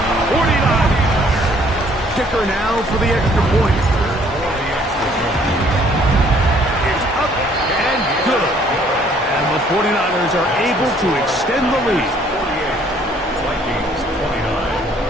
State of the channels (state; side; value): normal; both; correlation 0.61